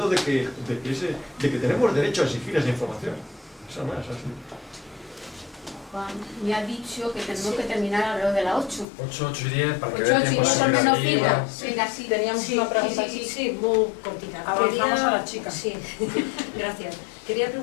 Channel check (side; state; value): right; drops out; at 8.8 s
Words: de que tenemos derecho a exigir esa información. Esa no es así. Juan me ha dicho que tenemos que terminar alrededor de las 8. 8 y 10, para que 8 vea y tiempo 10 son de menos seguir fila. arriba. Venga, sí, Teníamos una pregunta aquí. Sí, muy cortita. Avanzamos a la chica. Sí, gracias. Quería